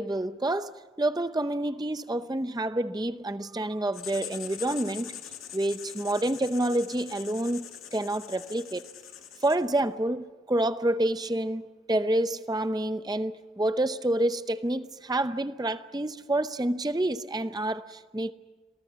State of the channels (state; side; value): normal; both; correlation 0.77